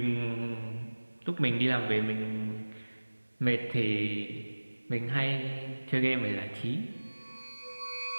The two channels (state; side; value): inverted; both; correlation -1.00